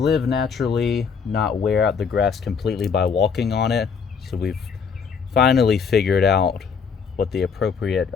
naturally, not wear out the grass completely by walking on it. So we've finally figured out what the appropriate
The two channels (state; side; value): quieter; right; 6.1 dB